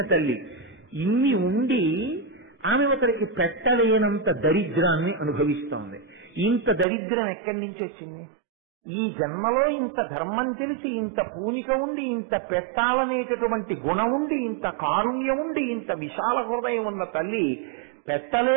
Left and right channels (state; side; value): drops out; left; at 6.9 s